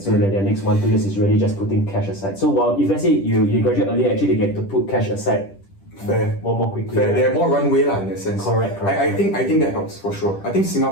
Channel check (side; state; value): right; late; 10 ms